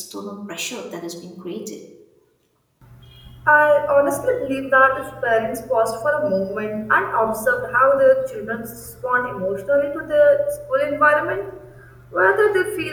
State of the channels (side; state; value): both; identical; correlation 1.00